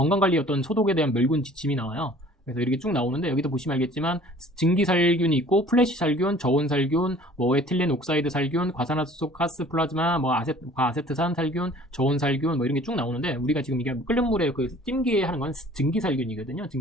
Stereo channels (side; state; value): both; normal; correlation 0.50